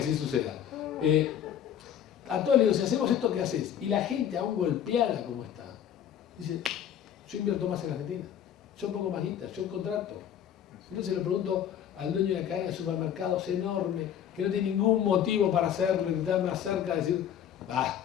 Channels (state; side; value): quieter; right; 9.6 dB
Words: suceda. A todos les digo, si hacemos esto, ¿qué haces? Y la gente aún golpeada como está, dice, yo invierto más en Argentina, yo pongo más guita, yo contrato. Entonces le pregunto al dueño de la cadena de supermercados enorme, que no tiene ningún motivo para hacerlo, que está más cerca, decir,